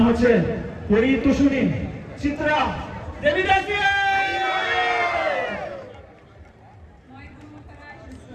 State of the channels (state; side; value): identical; both; correlation 1.00